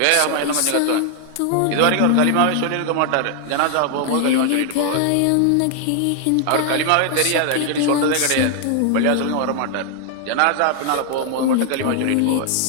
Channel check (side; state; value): both; different; correlation 0.00